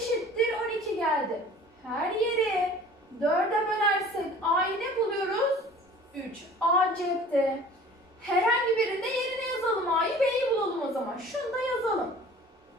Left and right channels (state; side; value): normal; both; correlation 0.46